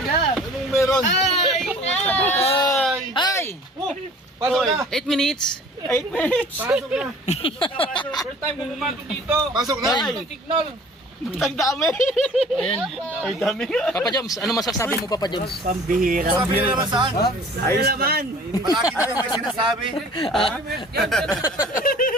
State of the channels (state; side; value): normal; both; correlation 0.48